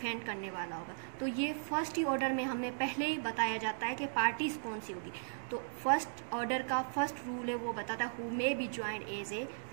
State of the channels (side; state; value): left; silent; digital silence